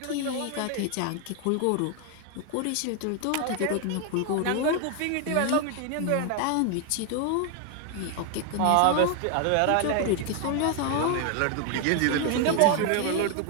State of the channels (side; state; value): both; different; correlation 0.00